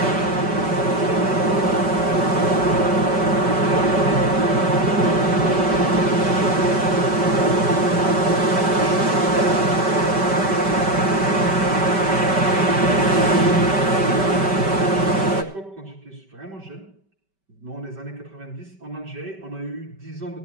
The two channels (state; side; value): late; left; 5.2 ms